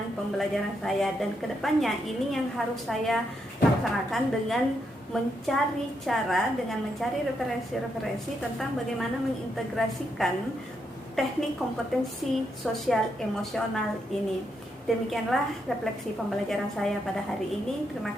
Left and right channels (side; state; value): both; normal; correlation 0.80